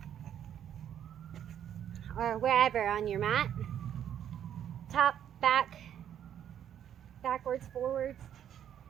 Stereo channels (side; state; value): left; quieter; 9.8 dB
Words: or wherever on your mat. Top, back, backwards, forwards,